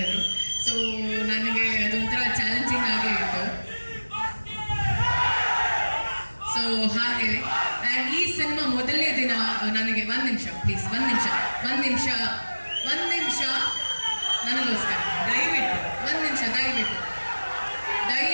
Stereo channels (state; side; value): inverted; both; correlation -1.00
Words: ಸೊ ನನಗೆ ಅದೊಂಥರ ಚಾಲೆಂಜಿಂಗ್ ಆಗೇ ಇತ್ತು. ಸೊ ಹಾಗೆ ಆ್ಯಂಡ್ ಈ ಸಿನಿಮಾ ಮೊದಲನೇ ದಿನ ನನಗೆ ಒಂದು ನಿಮಿಷ ಪ್ಲೀಸ್, ಒಂದು ನಿಮಿಷ ನನಗೋಸ್ಕರ ದಯವಿಟ್ಟು ಒಂದು ನಿಮಿಷ